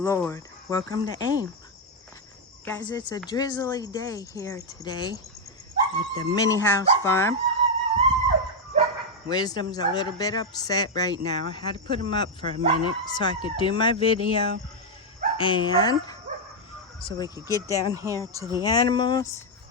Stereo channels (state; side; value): normal; both; correlation 0.01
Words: Welcome to AIM. Guys, it's a drizzly day here today at the mini house farm. Wisdom's a little bit upset right now. I had to put him up for a minute so I could do my video and so we could get down here to the animals